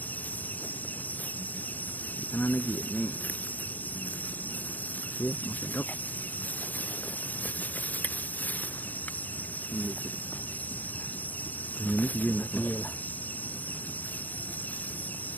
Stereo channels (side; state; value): right; late; 0.082 ms